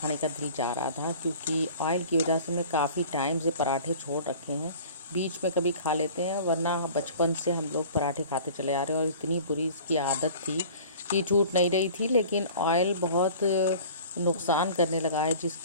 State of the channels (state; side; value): inverted; both; correlation -0.44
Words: का दिल जा रहा था, क्योंकि ऑयल की वजह से मैं काफ़ी टाइम से पराठे छोड़ रखे हैं। बीच में कभी खा लेते हैं, वरना बचपन से हम लोग पराठे खाते चले आ रहे हैं और इतनी बुरी इसकी आदत थी कि छूट नहीं रही थी। लेकिन ऑयल बहुत नुकसान करने लगा है,